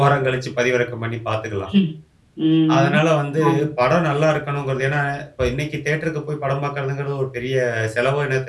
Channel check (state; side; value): identical; both; correlation 1.00